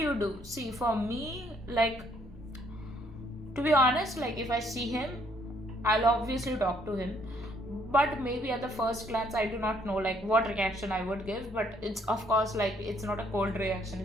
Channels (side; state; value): both; normal; correlation 0.67